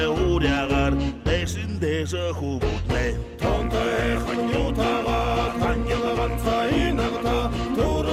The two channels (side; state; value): both; identical; correlation 1.00